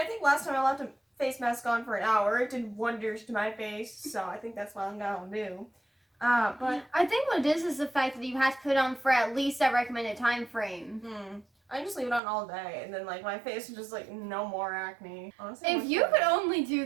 think last time I left a face mask on for an hour. It did wonders to my face, so I think that's what I'm gonna do. But I think what it is the fact that you have to put it on for at least that recommended time frame. I just leave it on all day, and then like my face is just like no more acne. Honestly, if you could only do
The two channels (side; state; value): left; drops out; at 12.2 s